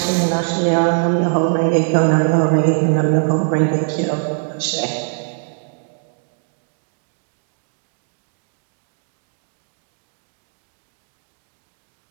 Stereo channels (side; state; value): left; silent; digital silence